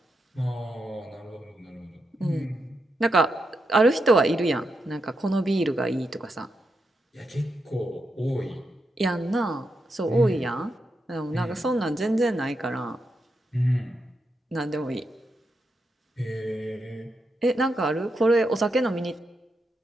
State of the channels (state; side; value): normal; both; correlation 0.85